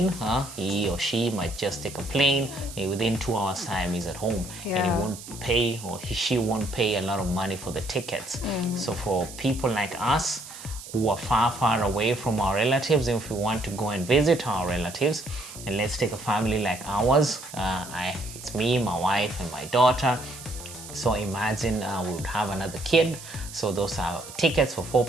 he or she might just take a plane, and within 2 hours time he's at home, and he won't pay, or she won't pay a lot of money for the tickets. So for people like us who are far away from our relatives, if we want to go and visit our relatives, and let's take a family like ours, it's me, my wife, and my daughter. So imagine we would have another kid. So those are tickets for 4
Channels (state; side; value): noise; right; hiss, 14 dB below the sound